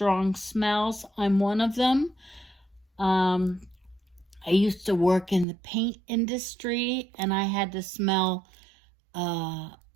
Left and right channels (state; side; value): drops out; left; at 5.5 s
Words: smells. I'm one of them. I used to work in the paint industry, and I had to smell